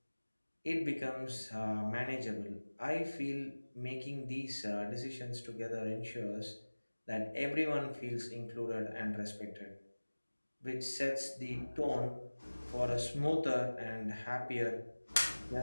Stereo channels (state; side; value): inverted; both; correlation -1.00